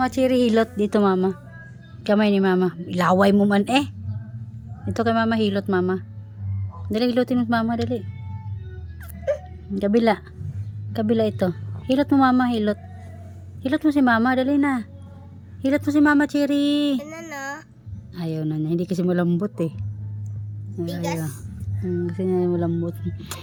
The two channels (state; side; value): identical; both; correlation 1.00